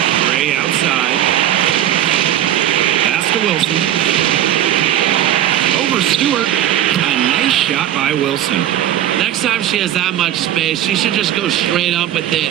Gray outside. Pass to Wilson. Over Stewart. A nice shot by Wilson. Next time she has that much space, she should just go straight up with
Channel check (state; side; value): quieter; left; 11.7 dB